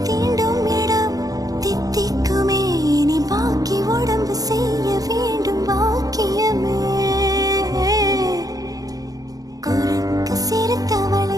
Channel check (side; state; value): left; late; 0.18 ms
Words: தீண்டும் இடம் தித்திக்குமே, நீ பாக்கி உடம்பு செய்ய வேண்டும் பாக்கியமே. குறுக்கு